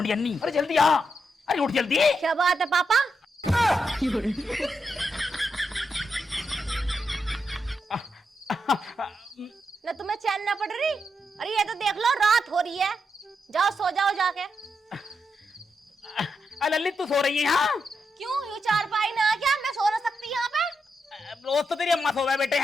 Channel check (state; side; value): normal; both; correlation 0.83